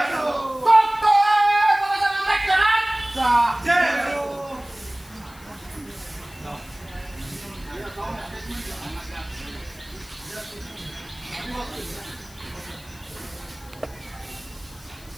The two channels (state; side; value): noise; left; hiss, 23 dB below the sound